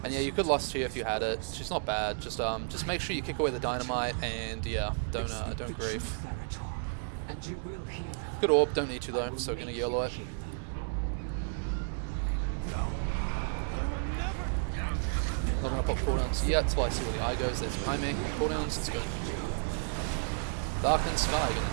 And yeah, you could lust here if you had it. She's not bad. Just make sure you kick away the dynamite, and yeah, don't grief. Good orb, don't need to though, so gonna yellow it. Not gonna pop cooldowns yet till I see where the eye goes. There's behind me. Cooldowns, let's go. Darkened Sky,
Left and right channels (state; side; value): silent; left; 56 dB below the other